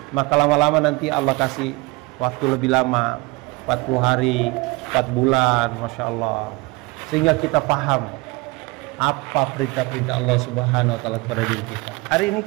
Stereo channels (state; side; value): quieter; left; 23.9 dB